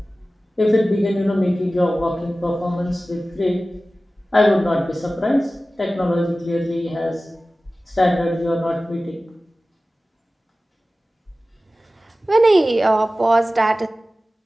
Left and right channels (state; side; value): normal; both; correlation 0.96